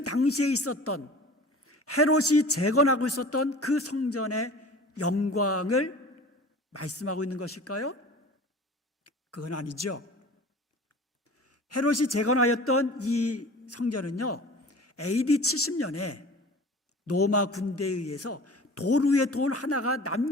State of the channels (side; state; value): both; normal; correlation 0.41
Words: 당시에 있었던 헤롯이 재건하고 있었던 그 성전의 영광을 말씀하고 있는 것일까요? 그건 아니죠. 헤롯이 재건하였던 이 성전은요, AD 70년에 로마 군대에 의해서 돌 위에 돌 하나가